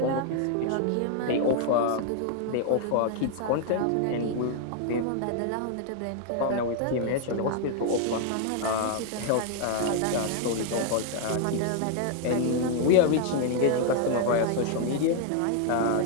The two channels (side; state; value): both; different; correlation 0.00